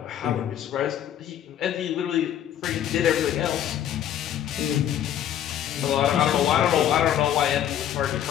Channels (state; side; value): quieter; right; 10.6 dB